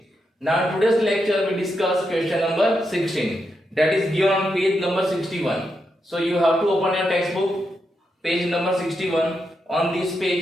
Now, in today's lecture, we discuss question number 16. That is given on page number 61. So, you have to open your textbook, page number 61. On this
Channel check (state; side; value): normal; both; correlation 0.84